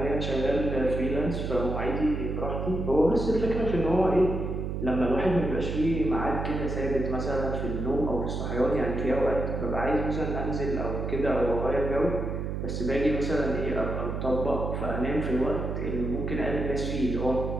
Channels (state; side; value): noise; right; hum, 3 dB below the sound